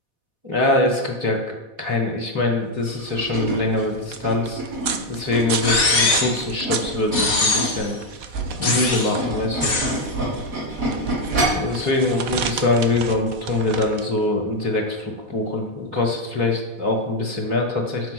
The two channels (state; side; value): late; left; 4.1 ms